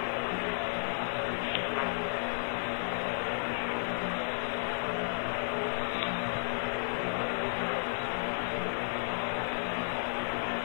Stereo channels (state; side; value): silent; right; 56 dB below the other